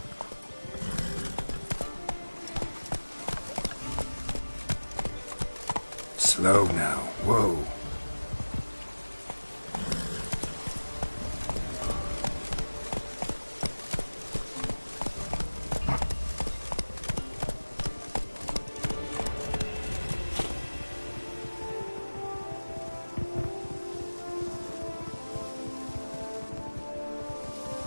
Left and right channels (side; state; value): both; inverted; correlation -1.00